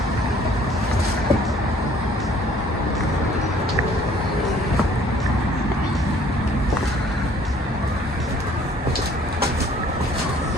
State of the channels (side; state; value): both; normal; correlation 0.57